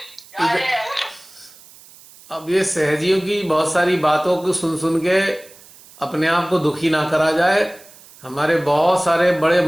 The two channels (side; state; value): right; noise; hiss, 23 dB below the sound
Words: इधर, अब ये सहजियों की बहुत सारी बातों को सुन सुन के अपने आप को दुखी ना करा जाए। हमारे बहुत सारे बड़े